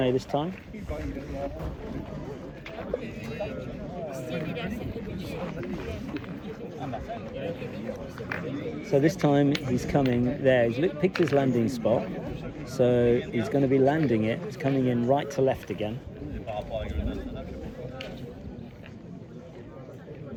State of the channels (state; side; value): identical; both; correlation 1.00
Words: this time. So this time he's coming there. He's picked his landing spot. So he's going to be landing it. It's coming in right to left again.